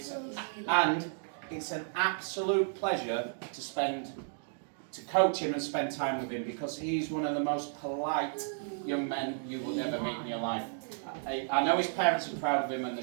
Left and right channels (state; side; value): silent; left; digital silence